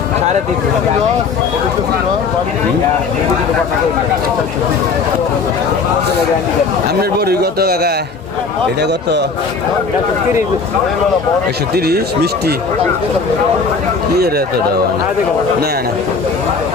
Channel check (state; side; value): quieter; right; 4.8 dB